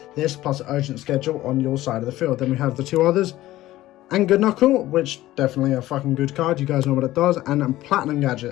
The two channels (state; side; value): quieter; right; 15.8 dB